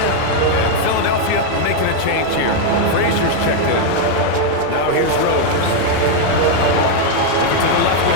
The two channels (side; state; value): both; different; correlation 0.01